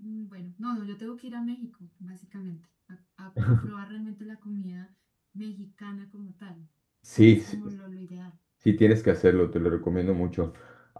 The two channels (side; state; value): both; identical; correlation 1.00